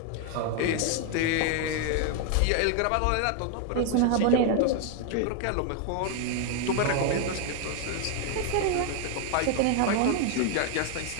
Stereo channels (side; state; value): both; different; correlation 0.00